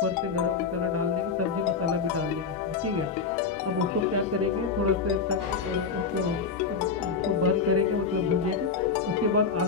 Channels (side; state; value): right; quieter; 5.3 dB